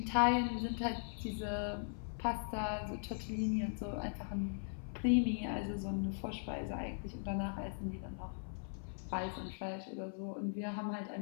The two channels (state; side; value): silent; right; 51 dB below the other